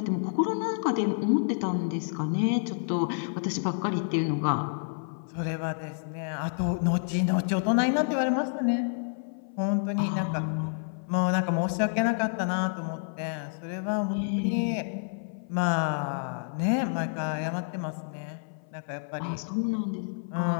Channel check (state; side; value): silent; right; 57 dB below the other